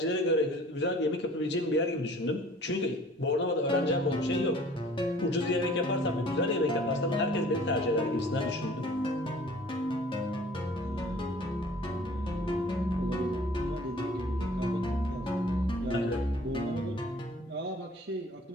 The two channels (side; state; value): both; normal; correlation 0.50